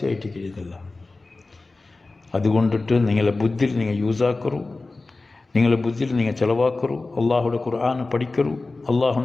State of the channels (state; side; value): quieter; right; 3.4 dB